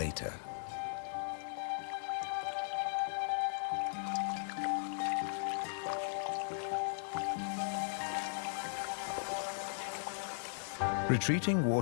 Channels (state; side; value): silent; right; digital silence